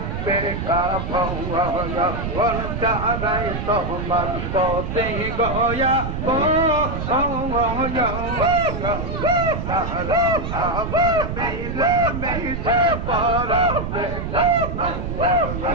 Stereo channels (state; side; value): noise; right; rumble, 4 dB below the sound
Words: বেকা ভগন তাহারাই তোমার অতি গয়া তাহারা আবার মিলে মিশে পড়া বেকা